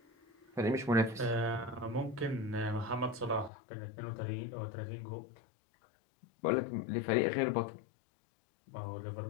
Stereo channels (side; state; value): right; drops out; at 3.5 s